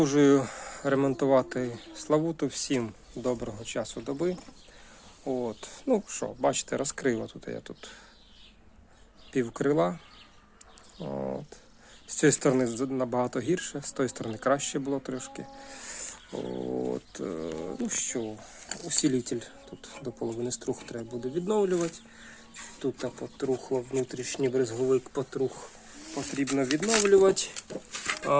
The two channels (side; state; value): both; identical; correlation 1.00